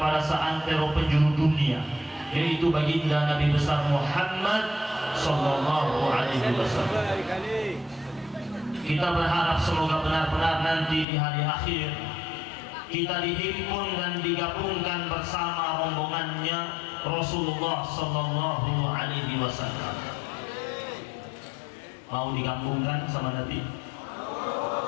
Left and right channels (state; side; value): drops out; right; at 11.1 s